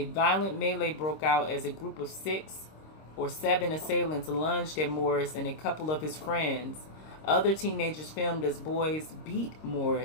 violent melee broke out as a group of 6 or 7 assailants lunged at Morris and a couple of his friends. Other teenagers filmed as boys beat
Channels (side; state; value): right; late; 26 ms